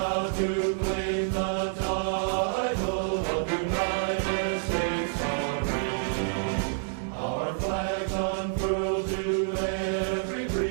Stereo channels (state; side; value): silent; left; digital silence